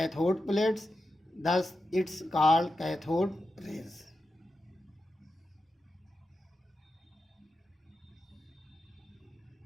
plates, thus it's called cathode rays।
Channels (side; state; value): both; normal; correlation 0.89